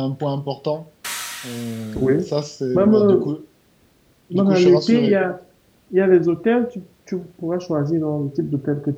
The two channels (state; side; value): identical; both; correlation 1.00